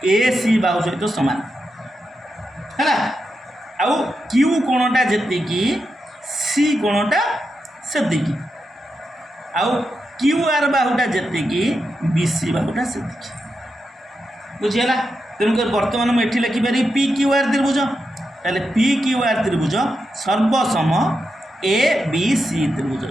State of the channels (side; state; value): both; normal; correlation 0.87